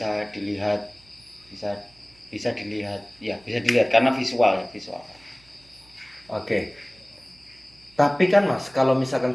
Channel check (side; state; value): right; noise; hum, 28 dB below the sound